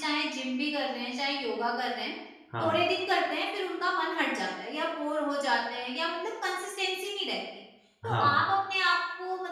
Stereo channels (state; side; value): identical; both; correlation 1.00